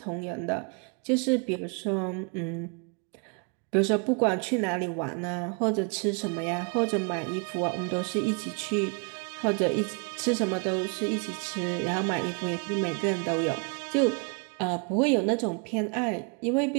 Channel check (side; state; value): left; quieter; 36.5 dB